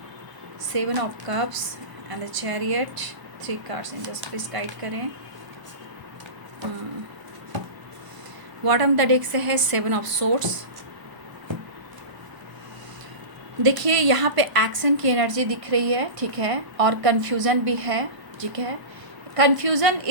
7 of cups and the chariot, 3 cards in just please guide करें। बॉटम द डेक से है 7 of swords। देखिए यहाँ पे एक्शन की एनर्जी दिख रही है, ठीक है, और कन्फ्यूज़न भी है, ठीक है। कन्फ्यूज़न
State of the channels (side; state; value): left; late; 1.0 ms